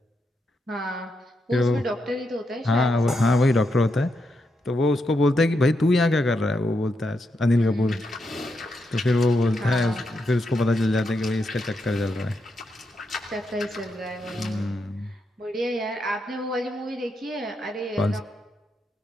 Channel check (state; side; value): normal; both; correlation 0.83